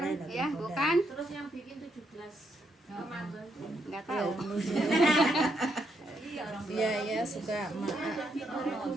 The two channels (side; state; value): both; normal; correlation 0.77